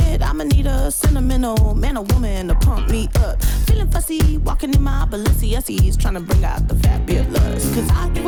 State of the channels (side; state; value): both; identical; correlation 1.00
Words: I'ma need a sentimental man or woman to pump me up. Feeling fussy, walking in my Balenciennes, trying to bring out the fabulous. Cause I give